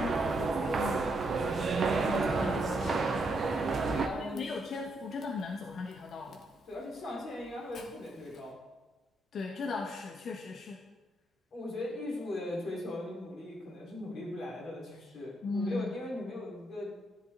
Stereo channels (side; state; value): both; normal; correlation 0.77